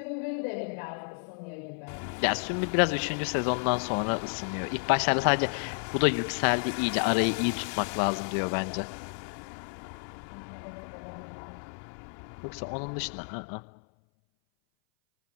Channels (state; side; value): silent; right; 58 dB below the other